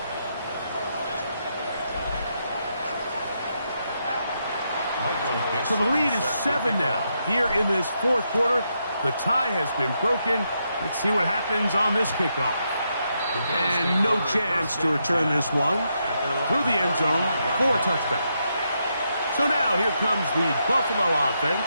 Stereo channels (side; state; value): both; inverted; correlation -0.81